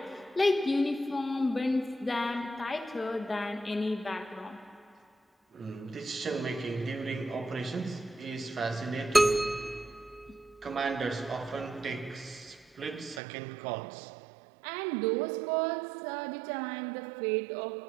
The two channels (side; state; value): left; drops out; at 13.2 s